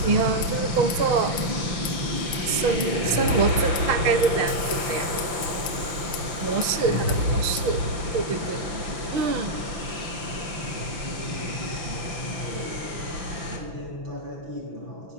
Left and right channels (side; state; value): left; late; 6.0 ms